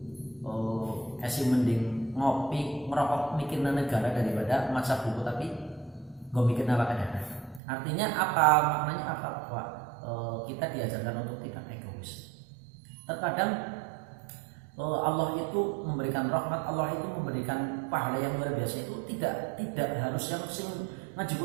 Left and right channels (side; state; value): left; drops out; at 7.6 s